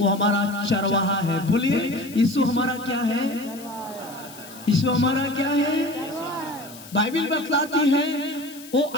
हमारा चरवाहा है। बोलिए, यीशु हमारा क्या है? यीशु हमारा क्या है? बाइबल बतलाती है वो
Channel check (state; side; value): noise; left; hiss, 18 dB below the sound